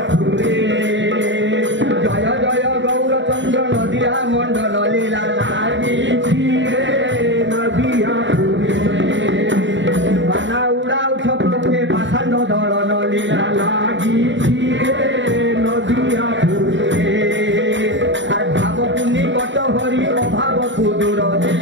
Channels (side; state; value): left; late; 0.54 ms